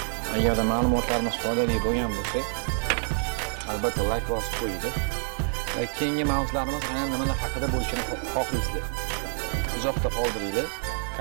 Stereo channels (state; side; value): silent; left; 60 dB below the other